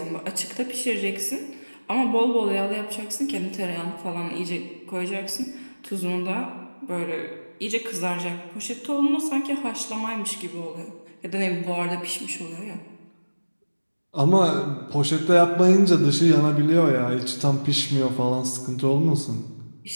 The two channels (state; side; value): inverted; both; correlation -1.00